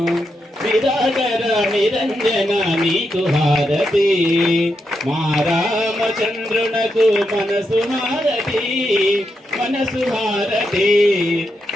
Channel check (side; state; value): both; normal; correlation 0.84